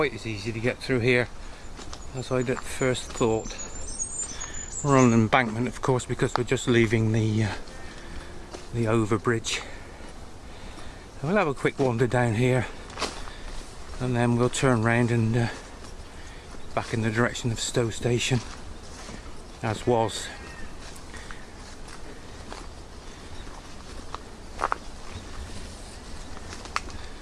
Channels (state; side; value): identical; both; correlation 1.00